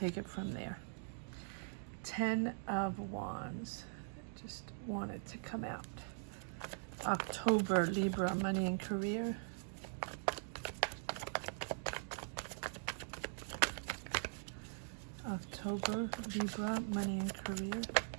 it from there. 10 of Wands. Just want it to come out. October, Libra, money and career. October, Libra, money and career.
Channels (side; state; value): left; silent; digital silence